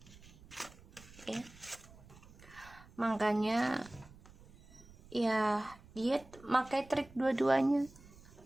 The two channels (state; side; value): noise; right; rumble, 22 dB below the sound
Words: ya. Makanya ya dia pakai trik dua-duanya.